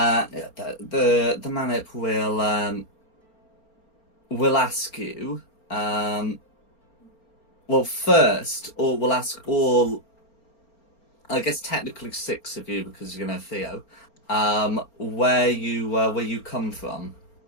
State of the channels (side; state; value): right; late; 4.4 ms